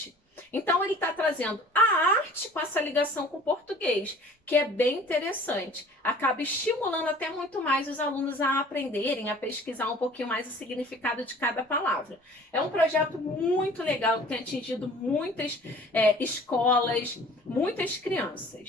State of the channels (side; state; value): both; normal; correlation 0.48